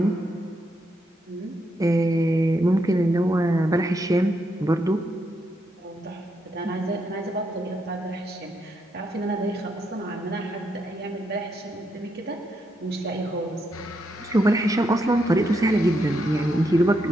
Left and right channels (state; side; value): normal; both; correlation 0.79